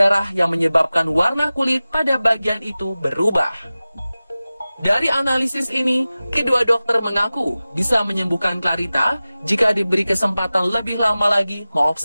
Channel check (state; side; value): inverted; both; correlation -0.97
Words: yang menyebabkan warna kulit pada bagian itu berubah. Dari analisis ini, kedua dokter mengaku bisa menyembuhkan Clarita jika diberi kesempatan lebih lama lagi